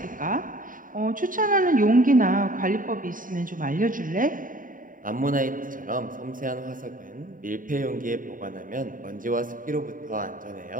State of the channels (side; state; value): left; late; 0.39 ms